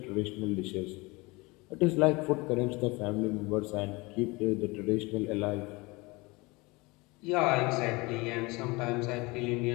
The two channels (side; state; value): right; quieter; 24.6 dB